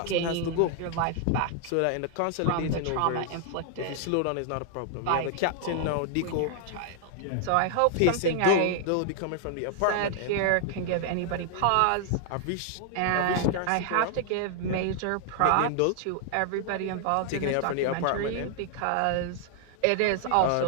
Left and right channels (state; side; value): different; both; correlation 0.00